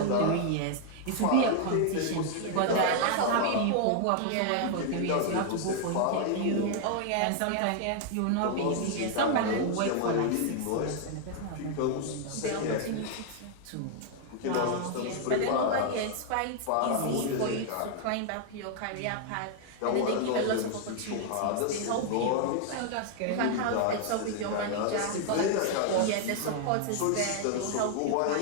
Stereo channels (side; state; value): both; different; correlation 0.00